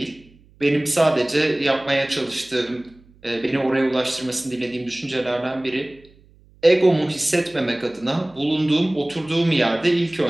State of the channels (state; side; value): noise; right; hum, 28 dB below the sound